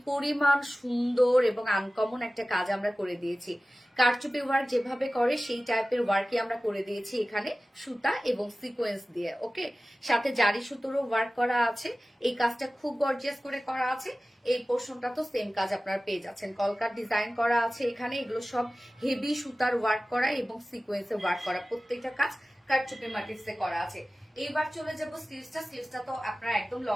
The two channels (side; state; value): both; normal; correlation 0.96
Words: পরিমাণ সুন্দর এবং আনকমন একটা কাজ আমরা করে দিয়েছি। কারচুপি ওয়ার্ক যেভাবে করে সেই টাইপের ওয়ার্কই আমরা করে দিয়েছি এখানে সুতা এবং সিকোয়েন্স দিয়ে। ওকে, সাথে জারি সুতোরও ওয়ার্ক করা আছে। এই কাজটা খুব গর্জিয়াস করে করা আছে। এই পোর্শনটা তো সেম কাজ আপনারা পেয়ে যাচ্ছেন, কলকার ডিজাইন করা আছে এখানে। এগুলো সব হেভি সুতার ওয়ার্ক করা এবং সিকোয়েন্সে ওয়ার্ক করা, প্রত্যেকটা কাজ কারচুপি মোটিভসে করা আছে। এইবার চলে যাব স্লিভসটা। স্লিভসটা তো আপনারা একদম